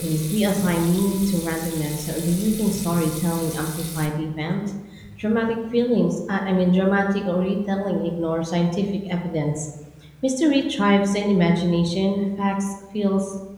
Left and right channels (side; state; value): both; identical; correlation 1.00